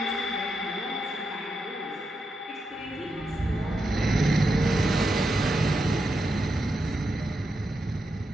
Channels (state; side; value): normal; both; correlation 0.85